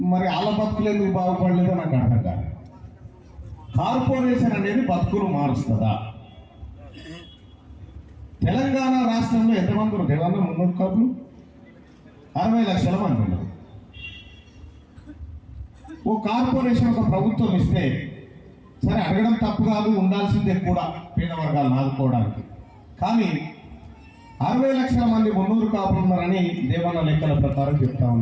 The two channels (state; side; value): identical; both; correlation 1.00